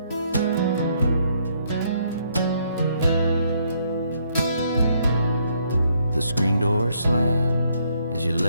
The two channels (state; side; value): inverted; both; correlation -0.70